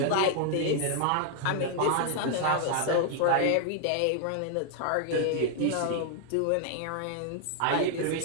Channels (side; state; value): both; different; correlation 0.00